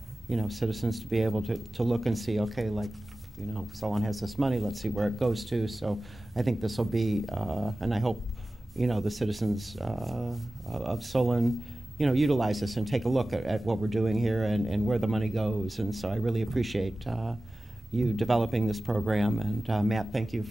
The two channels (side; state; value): both; normal; correlation 0.96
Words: citizens to be able to look and see, okay, like, someone has this money, let's see where it goes to. So I think this will be, and I hope, the citizens of Solon, utilize this and take a look at what we're doing here and where the money goes. And so I really appreciate you developing this program. And Matt, thank you